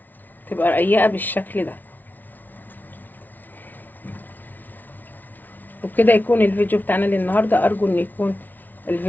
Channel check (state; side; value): late; right; 0.084 ms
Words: تبقى رقيقة بالشكل ده. وبكده يكون الفيديو بتاعنا للنهارده. ارجو ان يكون